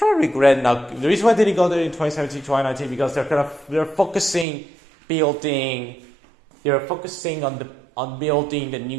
of regret now. The reason why I didn't go there in 2017, 2019, because they're focusing on building the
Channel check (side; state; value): left; drops out; at 4.5 s